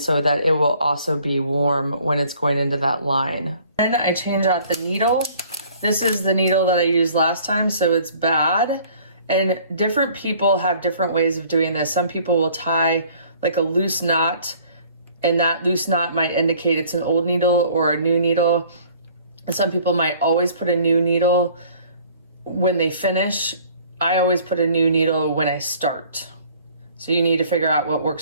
so that it will also be warm when it's going into that line. Then I change out the needle. This is the needle that I used last time, so it's bad. And different people have different ways of doing this. Some people will tie like a loose knot, and that loose knot might indicate it's an old needle or a new needle. And some people might always put a new needle when they finish. I always put a new needle when I start. So you need to figure out what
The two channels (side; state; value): both; inverted; correlation -0.55